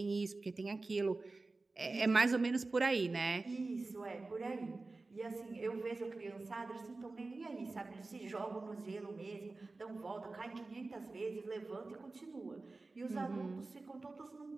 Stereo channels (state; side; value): quieter; left; 3.5 dB